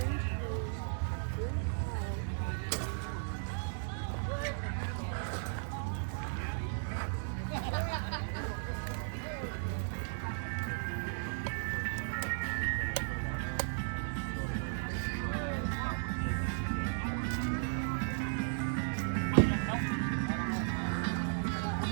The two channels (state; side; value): silent; left; digital silence